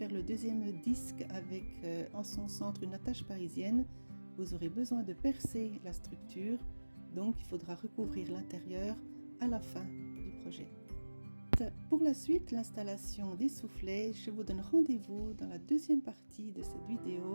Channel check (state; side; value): inverted; both; correlation -1.00